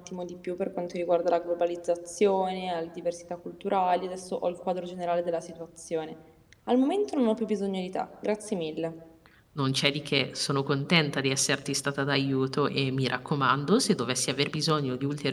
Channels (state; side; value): identical; both; correlation 1.00